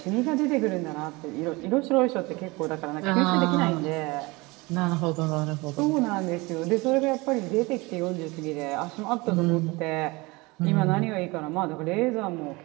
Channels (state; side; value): quieter; left; 24.1 dB